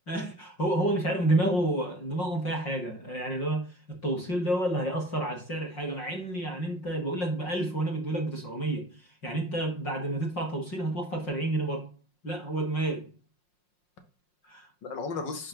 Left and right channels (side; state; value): right; late; 5.6 ms